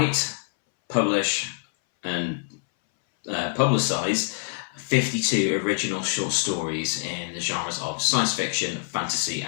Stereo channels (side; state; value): right; silent; 60 dB below the other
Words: publish, and publicize 52 original short stories in the genres of science fiction, fantasy,